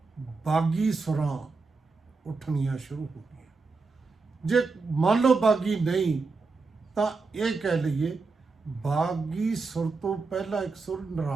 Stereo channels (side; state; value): left; quieter; 4.2 dB